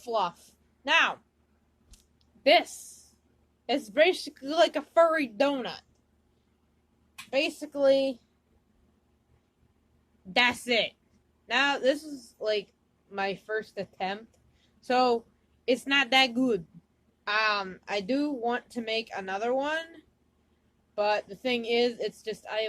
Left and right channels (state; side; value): identical; both; correlation 1.00